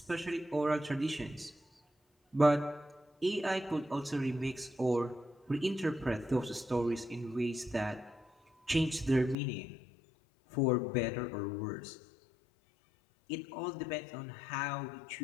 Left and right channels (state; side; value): drops out; right; at 9.3 s